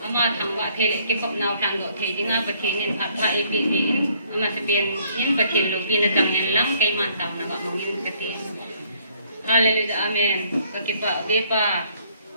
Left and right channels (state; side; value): inverted; both; correlation -0.64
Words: ama thangwa thele ke kop naw tan go the jinga pathin in phat pha e bi in ama se ben in pathin lo bin tang en lang kai man tam na ga mungin pathin haleluya amen ka ke pa be pa